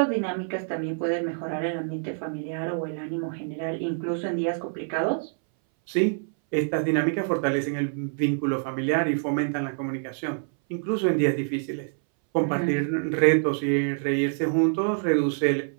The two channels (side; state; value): left; silent; 60 dB below the other